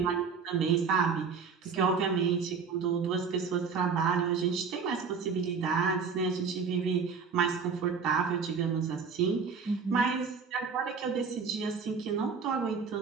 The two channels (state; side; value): quieter; left; 5.6 dB